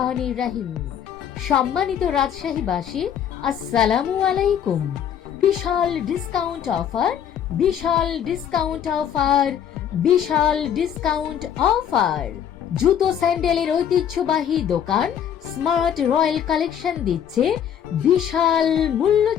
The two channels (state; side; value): quieter; right; 9.1 dB